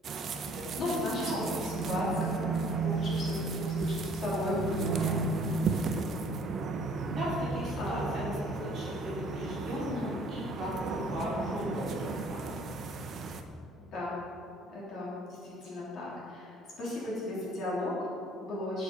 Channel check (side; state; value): both; normal; correlation 0.57